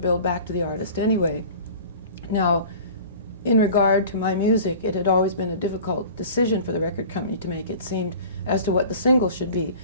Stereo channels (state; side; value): inverted; both; correlation -0.41